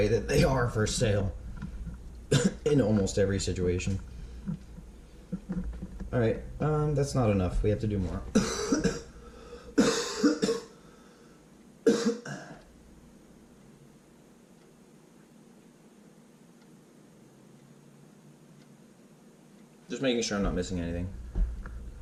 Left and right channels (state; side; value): identical; both; correlation 1.00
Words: that they are for sale in almost every situation. Alright, that's not enough. We have to do more. Just making sure I'm not missing anything.